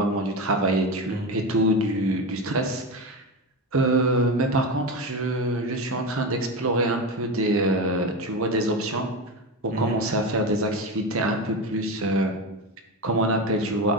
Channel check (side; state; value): both; normal; correlation 0.20